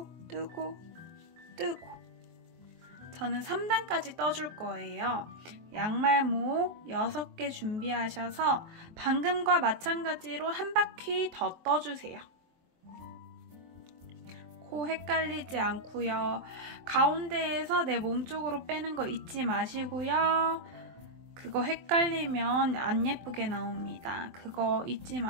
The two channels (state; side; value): late; left; 23 ms